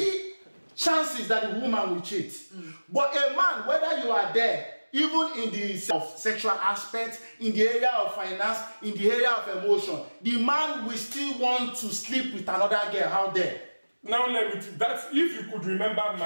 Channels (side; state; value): both; inverted; correlation -1.00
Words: chances that the woman will cheat. But a man, whether you are there, even in the sexual aspect, in the area of finance, in the area of emotion, the man will still want to sleep with another girl out there. Now let me. That's if you could remember